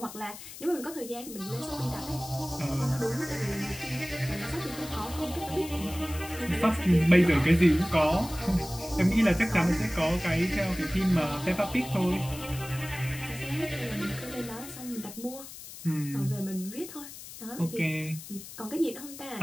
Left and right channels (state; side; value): noise; left; hiss, 13 dB below the sound